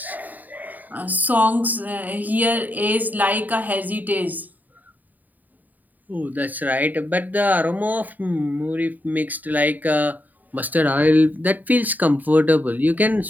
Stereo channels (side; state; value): left; late; 0.083 ms